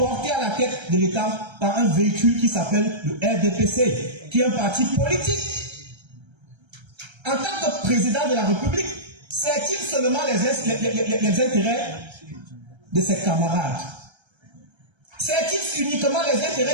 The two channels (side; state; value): left; late; 1.3 ms